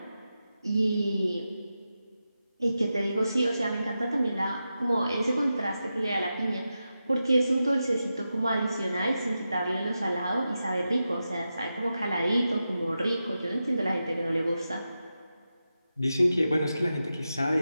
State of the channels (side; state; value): both; inverted; correlation -0.90